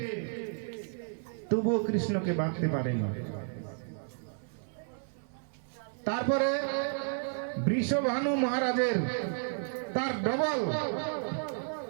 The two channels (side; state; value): left; silent; 56 dB below the other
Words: তবুও কৃষ্ণকে বাঁধতে পারেনি। তারপরে বৃষভানু মহারাজের তার ডবল